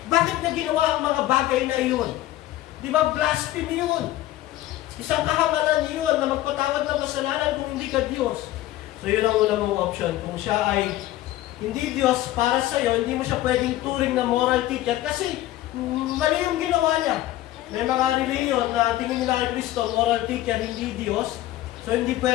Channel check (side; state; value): right; quieter; 15.0 dB